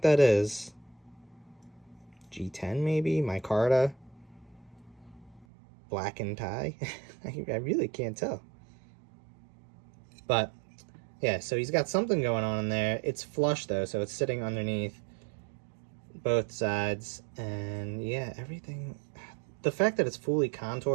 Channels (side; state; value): left; drops out; at 5.5 s